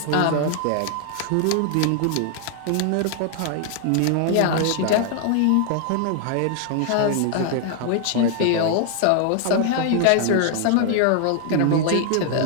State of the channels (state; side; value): different; both; correlation 0.00